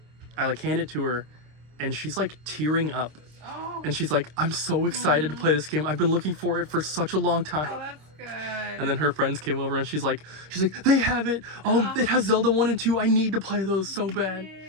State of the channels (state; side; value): late; left; 26 ms